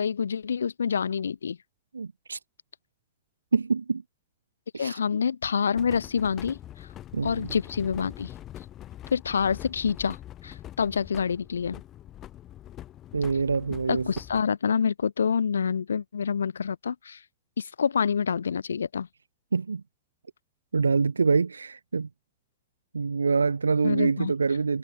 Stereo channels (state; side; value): inverted; both; correlation -0.82